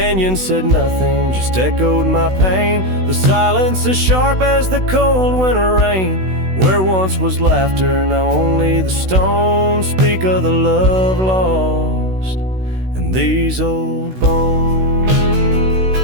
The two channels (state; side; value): late; left; 16 ms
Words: said nothing, just echoed my pain. The silence as sharp as the cold winter rain. Where once was laughter, now only the stones speak of the love lost and these old bones.